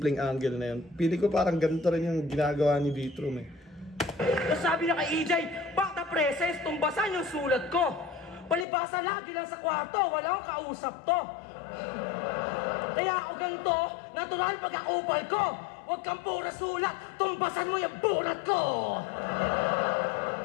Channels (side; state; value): right; drops out; at 8.7 s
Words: angle na yun. Pili ko parang ganito rin yung ginagawa ni Vitrum, eh. Sabi na kay EJ, back the presence, tumbasan yung sulat ko. Palibasa lagi lang sa kwarto, walang kausap to. Kaya ako ganito, natural pagkakupal ko. Huwag kang pura sulat, tumbasan mo yung bulat ko.